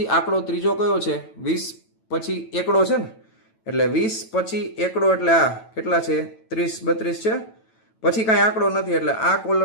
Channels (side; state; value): right; late; 9.1 ms